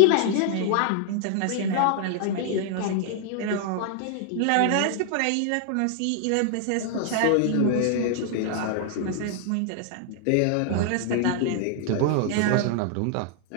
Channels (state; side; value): different; both; correlation 0.00